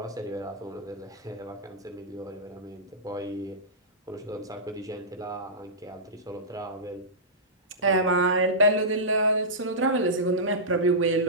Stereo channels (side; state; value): both; normal; correlation -0.15